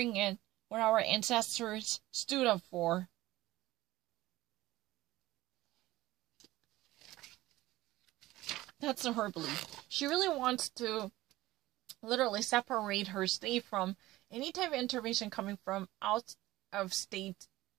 at what our ancestors stood up for. That's her belief. She really wants to literally separate her state from any type of intervention coming from out of state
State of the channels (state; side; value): quieter; left; 17.3 dB